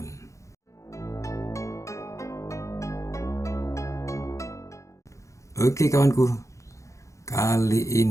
Oke kawanku, kali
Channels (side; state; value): right; late; 0.15 ms